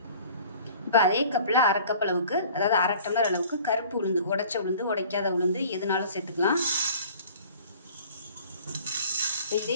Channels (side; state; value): both; inverted; correlation -0.48